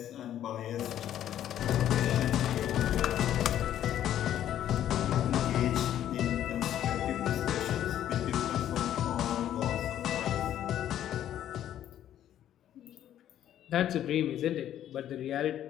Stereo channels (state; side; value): quieter; right; 11.2 dB